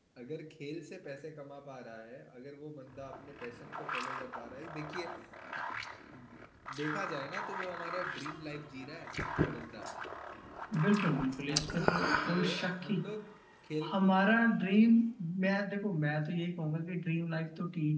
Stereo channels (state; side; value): identical; both; correlation 1.00